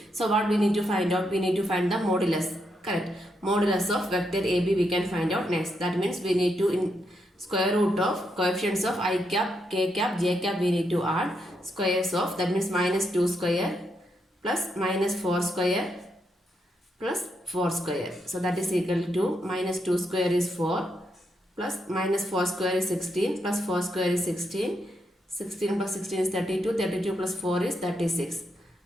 So what we need to find out? We need to find the modulus. Correct. Modulus of vector AB we can find out next. That means we need to in square root of coefficients of I cap, k cap, j cap we need to add squares of, that means minus 2 square plus minus 4 square plus 4 square. So that is equal to minus 2 square is 4 plus minus 4 square is 16 plus 4 square is 16. 16 plus 16 is 32. 32 plus 4 is 36.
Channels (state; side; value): normal; both; correlation 0.80